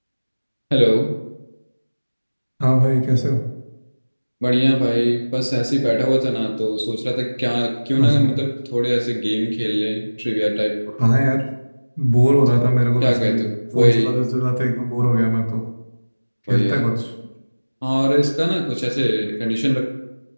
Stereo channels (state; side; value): inverted; both; correlation -1.00